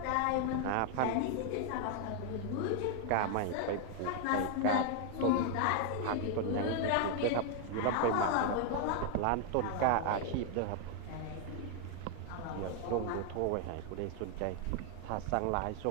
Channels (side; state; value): both; different; correlation 0.00